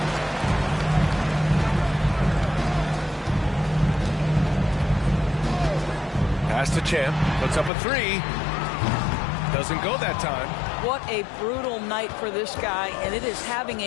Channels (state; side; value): drops out; right; at 7.7 s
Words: Pass to Champ. Puts up a 3. Doesn't go that time. What a brutal night for this guy, and it is having